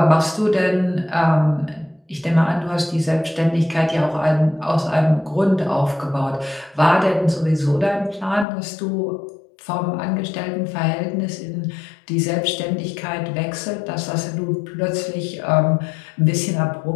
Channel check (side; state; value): right; drops out; at 8.5 s